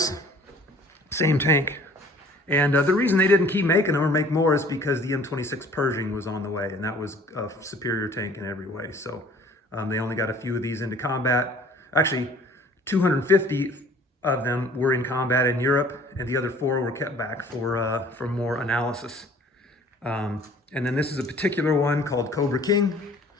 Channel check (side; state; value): both; normal; correlation 0.52